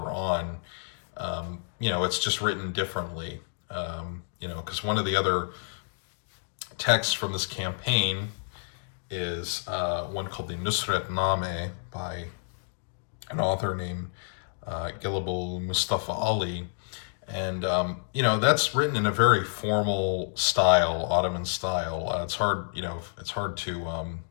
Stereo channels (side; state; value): right; silent; digital silence